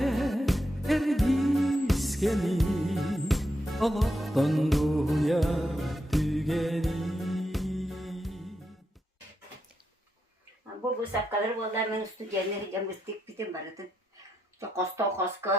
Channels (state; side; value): normal; both; correlation 0.83